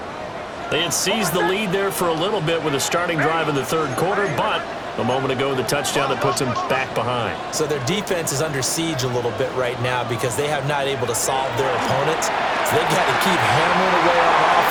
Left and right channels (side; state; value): both; identical; correlation 1.00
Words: They had seized the lead there for a little bit with a starting drive in the third quarter, but a moment ago, the touchdown that puts them back behind. So their defense is under siege a little bit right now because they have not able to solve their opponents. So they've got to keep hammering away on